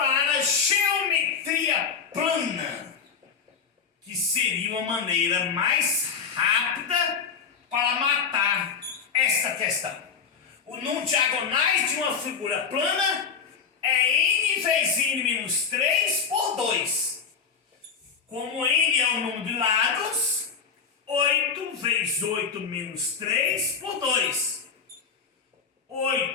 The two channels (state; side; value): quieter; right; 6.1 dB